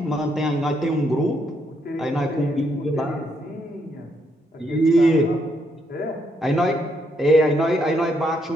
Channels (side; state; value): both; normal; correlation 0.75